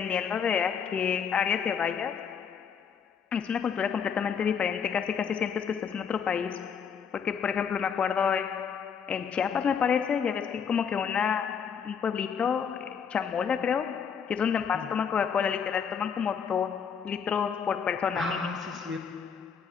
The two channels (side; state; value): right; quieter; 7.1 dB